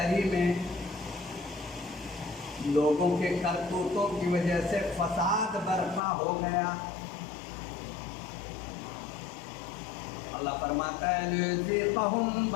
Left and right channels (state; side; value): drops out; right; at 6.0 s